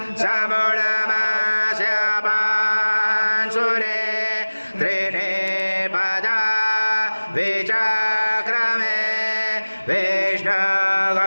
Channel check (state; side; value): inverted; both; correlation -1.00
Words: समूढमास्य पांशुरे त्रीणि पदा विचक्रमे